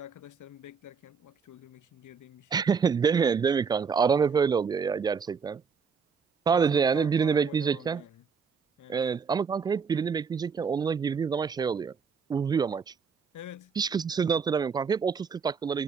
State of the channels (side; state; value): left; quieter; 5.8 dB